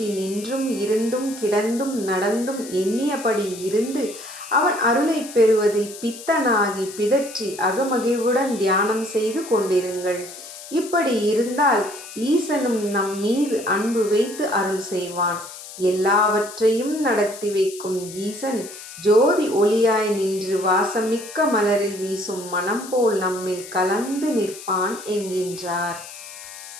நின்றும் இருந்தும் கிடந்தும் நடந்தும் எண்ணியபடி இருந்து அவன் அருளை பெறுவதில் பித்தனாகி பிதற்றி அகமகிழ்வுடன் தியானம் செய்து கொண்டிருங்கள். இப்படி இருந்தால் ஈசனும் நம் மீது அன்பு வைத்து அருள் செய்வான். எல்லாவற்றையும் நடத்தி வைக்கும் ஈசன் ஜோதி ஒளியாய் நின்று வாசமிக்க மலரில் வீசும் மனம் போல் நம்மில் கலந்து நிற்பான் என்கின்றார்.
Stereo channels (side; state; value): left; noise; hiss, 14 dB below the sound